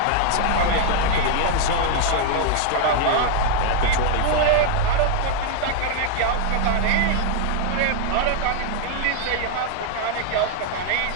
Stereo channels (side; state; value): both; different; correlation 0.00